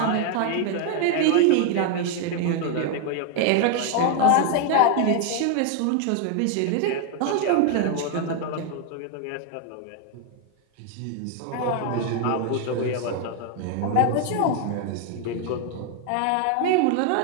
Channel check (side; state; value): both; different; correlation 0.01